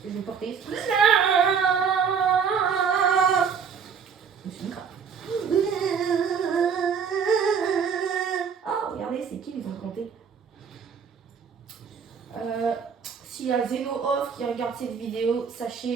Je vais porter. Je suis une crabe. Oh, regardez, c'est qui, ils ont compté. S'il y a Zeno Off qui regarde cette vidéo,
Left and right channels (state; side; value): quieter; left; 6.6 dB